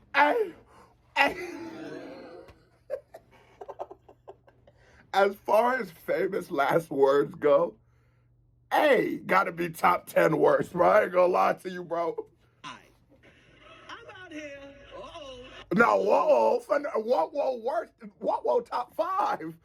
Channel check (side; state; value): both; identical; correlation 1.00